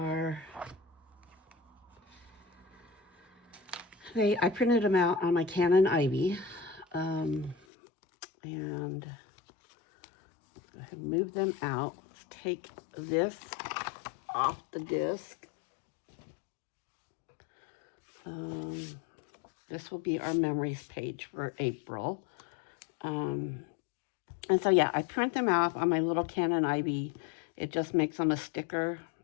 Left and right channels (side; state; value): right; drops out; at 7.6 s